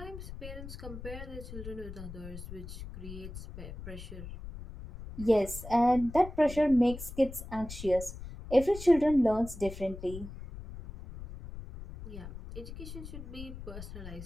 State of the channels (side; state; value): left; noise; rumble, 11 dB below the sound